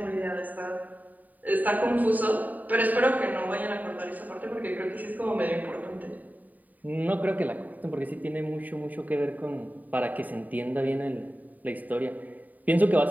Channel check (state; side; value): late; left; 0.081 ms